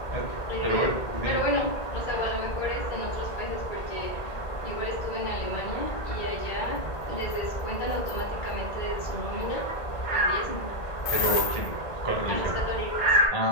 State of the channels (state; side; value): late; right; 1.8 ms